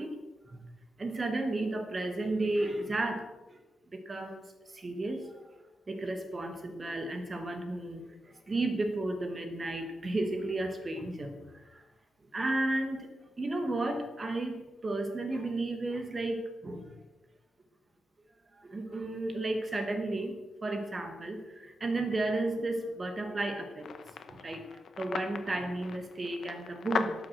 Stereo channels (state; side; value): normal; both; correlation 0.90